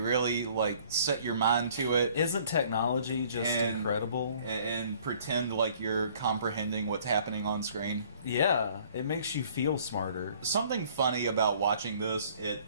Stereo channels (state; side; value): inverted; both; correlation -0.56